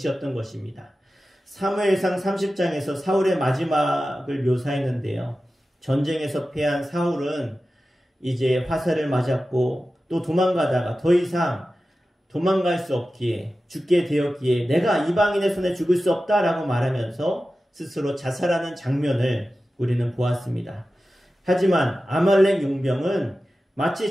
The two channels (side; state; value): both; normal; correlation 0.94